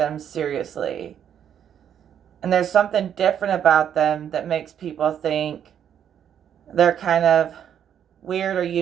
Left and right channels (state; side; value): quieter; left; 9.1 dB